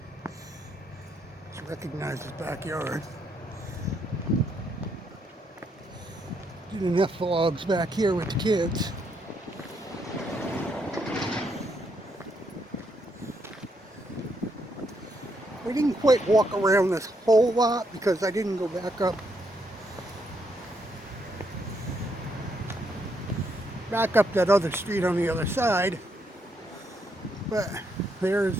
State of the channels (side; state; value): both; normal; correlation 0.76